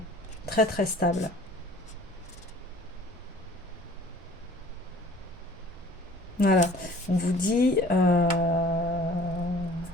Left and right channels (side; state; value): both; normal; correlation 0.50